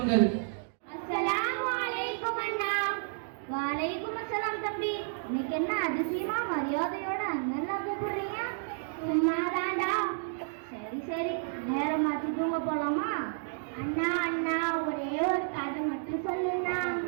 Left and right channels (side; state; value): left; silent; digital silence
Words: அஸ்ஸலாமு அலைக்கும் அண்ணா. வலைக்கும் அஸ்ஸலாம் தம்பி. இன்னைக்கு என்ன அதிசயமா மரியாதையோட அண்ணன் கூப்பிடுறீங்க? சும்மாதான்டா. சரி சரி, நேரம் மாத்தி தூங்க போலாமா? அண்ணா அண்ணா, ஒரே ஒரு கதை மட்டும் சொல்லுண்ணா.